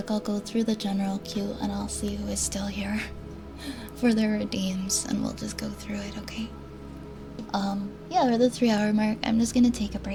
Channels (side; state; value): both; identical; correlation 1.00